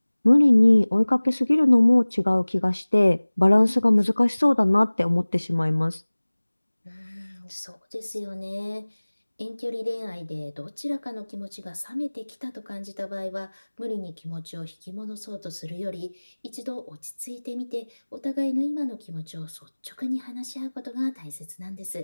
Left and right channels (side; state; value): both; inverted; correlation -1.00